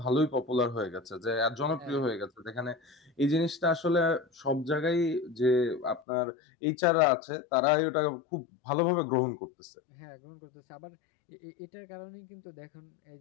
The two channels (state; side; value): drops out; right; at 6.0 s